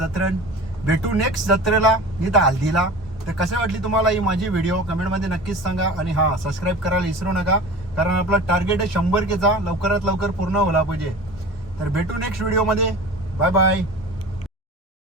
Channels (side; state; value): both; normal; correlation 0.37